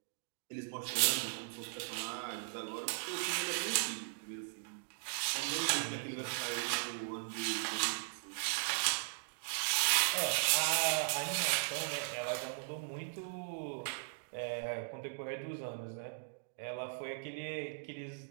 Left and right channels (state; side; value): silent; left; digital silence